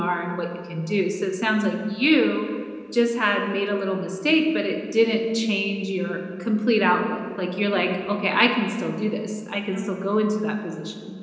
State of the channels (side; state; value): both; identical; correlation 1.00